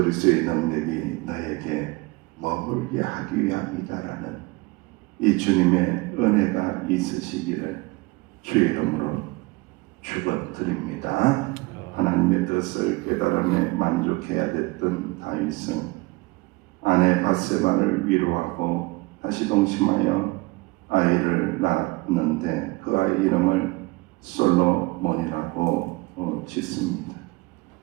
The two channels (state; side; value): quieter; left; 24.1 dB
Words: 능력이 너에게 머물게 하기 위함이다라는 이 주님의 은혜가 있으시기를 주의 이름으로 축원드립니다. 하나님의 뜻을 깨달음에 만족해야 됐던 다윗은 아내 밧세바를 위로하고 다시 동침하여 아이를 낳았는데 그 아이 이름을 솔로몬이라고 짓습니다.